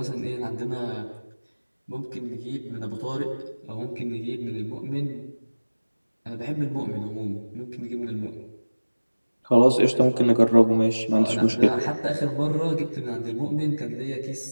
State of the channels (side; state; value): both; inverted; correlation -1.00